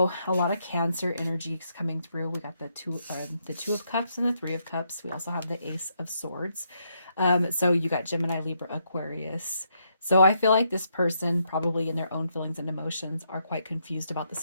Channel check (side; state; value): both; inverted; correlation -0.77